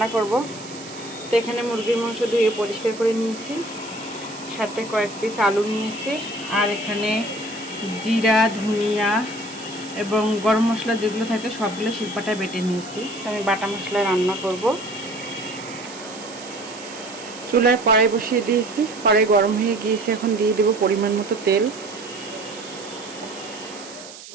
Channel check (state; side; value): noise; right; hiss, 16 dB below the sound